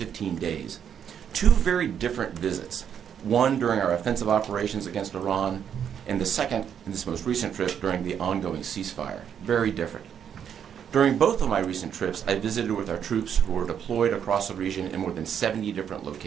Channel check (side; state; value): left; quieter; 8.5 dB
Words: days. 2 very different visits, one during our offensive operations against Iran, and the second in this most recent trip during the ongoing ceasefire. Very different. During both of my recent trips, I visited with our troops who were deployed across the region in more than 70 different